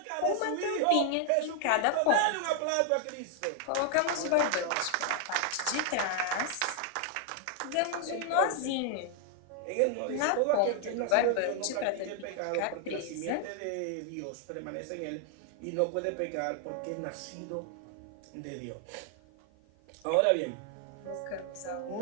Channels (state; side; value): different; both; correlation 0.00